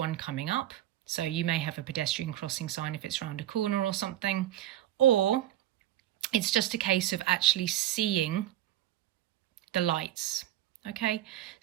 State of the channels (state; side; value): quieter; left; 13.3 dB